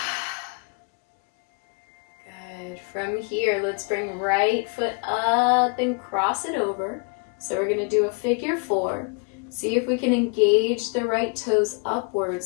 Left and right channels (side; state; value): right; quieter; 36.4 dB